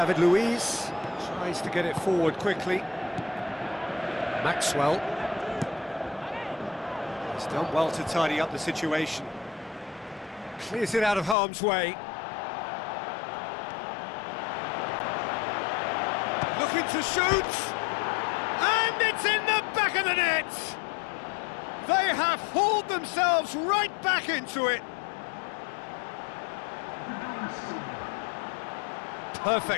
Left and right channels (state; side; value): drops out; right; at 11.4 s